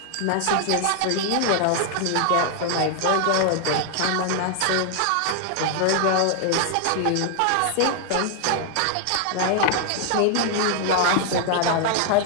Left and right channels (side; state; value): both; different; correlation 0.00